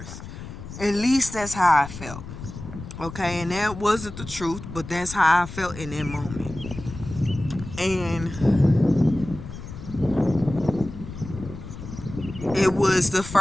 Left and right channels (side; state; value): left; noise; rumble, 12 dB below the sound